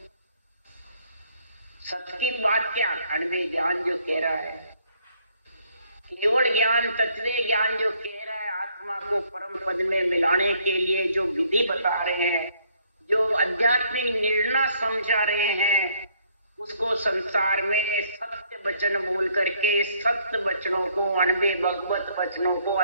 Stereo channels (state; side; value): inverted; both; correlation -0.66